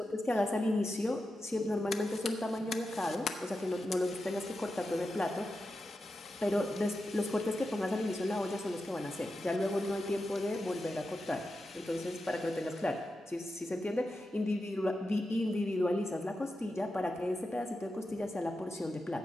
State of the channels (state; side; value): normal; both; correlation 0.90